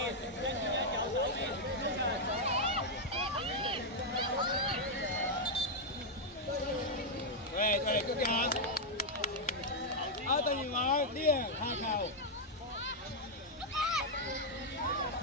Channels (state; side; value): normal; both; correlation -0.02